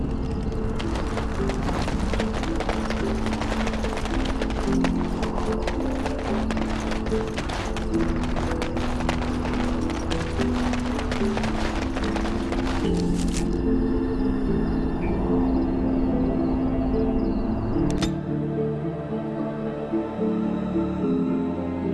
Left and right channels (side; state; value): both; identical; correlation 1.00